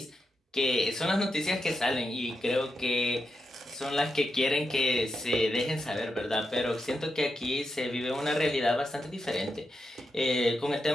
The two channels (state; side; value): normal; both; correlation 0.86